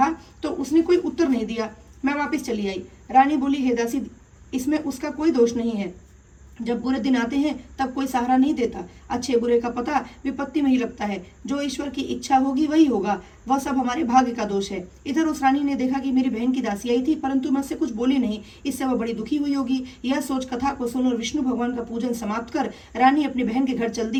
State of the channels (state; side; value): identical; both; correlation 1.00